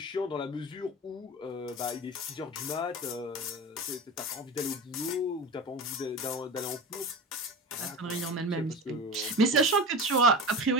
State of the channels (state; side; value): normal; both; correlation 0.30